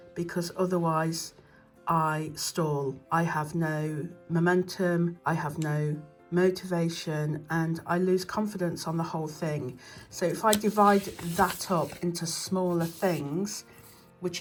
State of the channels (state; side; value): identical; both; correlation 1.00